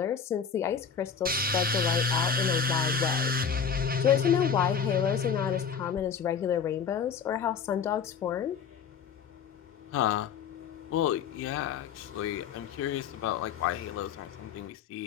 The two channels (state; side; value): quieter; right; 6.8 dB